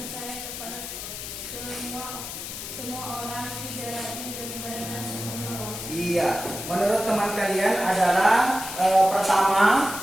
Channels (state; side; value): noise; left; hiss, 8 dB below the sound